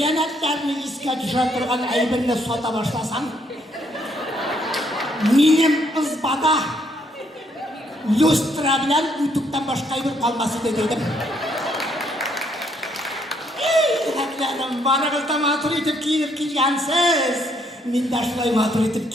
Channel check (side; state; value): both; normal; correlation 0.71